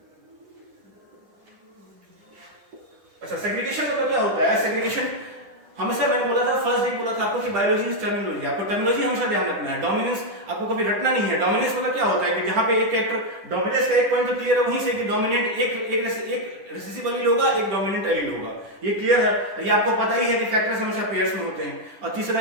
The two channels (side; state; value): left; late; 10 ms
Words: अच्छा, सेग्रीगेशन मतलब क्या होता है? सेग्रीगेशन हमेशा मैंने बोला था, फर्स्ट डे बोला था आपको कि बायोलॉजी इज टर्मिनोलॉजी। आपको टर्मिनोलॉजी हमेशा ध्यान रखना है। डोमिनेंस आपको कभी रटना नहीं है। डोमिनेंस मतलब क्या होता है कि जहां पे एक कैरेक्टर डोमिनेंस का एक पॉइंट तो क्लियर है, वहीं से कि डोमिनेंट एक रिसेसिव एलील होगा, एक डोमिनेंट एलील होगा, ये क्लियर है। ये आपको पता ही है कि फैक्टर्स हमेशा पेयर्स में होते हैं, और तीसरा